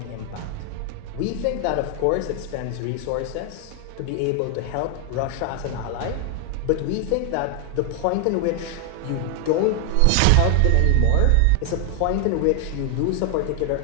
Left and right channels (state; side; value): different; both; correlation 0.00